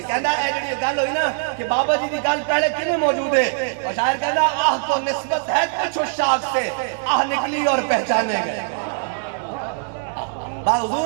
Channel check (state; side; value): silent; left; digital silence